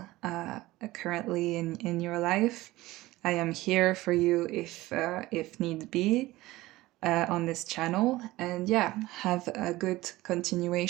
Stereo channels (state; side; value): quieter; left; 18.3 dB